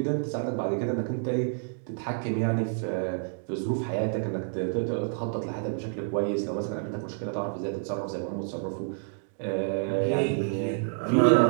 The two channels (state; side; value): silent; left; digital silence